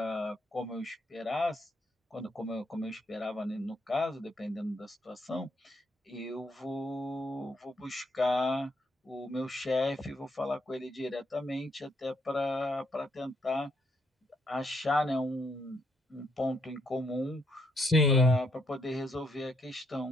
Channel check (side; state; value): both; normal; correlation 0.74